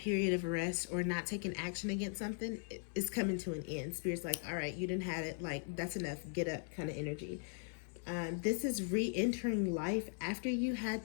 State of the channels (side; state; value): right; silent; 52 dB below the other